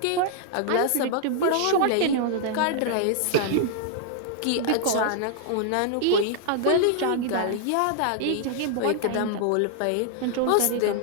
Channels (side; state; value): both; different; correlation -0.01